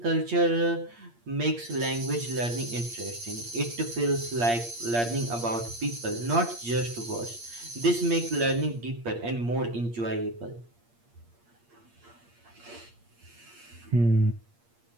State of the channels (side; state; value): left; late; 8.6 ms